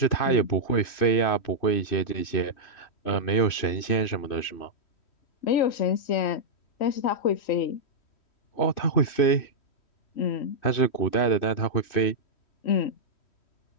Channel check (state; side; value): late; right; 2.5 ms